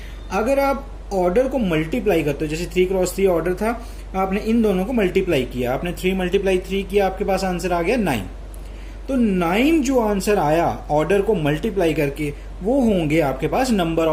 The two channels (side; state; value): both; identical; correlation 1.00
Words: अगर आप ऑर्डर को मल्टीप्लाई करते हो, जैसे 3 क्रॉस 3 ऑर्डर था, आपने इन दोनों को मल्टीप्लाई किया, आपने 3 मल्टीप्लाई 3 किया, आपके पास आंसर आ गया 9। तो 9 जो आंसर आया ऑर्डर को मल्टीप्लाई करके, वो होंगे आपके पास number